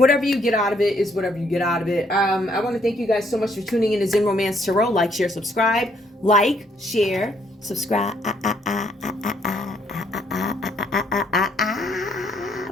you get out of it is whatever you get out of it. I want to thank you guys so much for tuning in to Zen Romance Tarot. Like, share, subscribe. Like, share, subscribe.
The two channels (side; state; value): both; normal; correlation 0.69